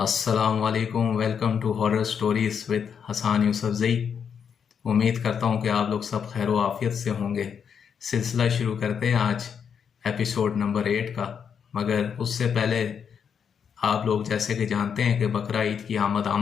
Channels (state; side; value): quieter; right; 7.2 dB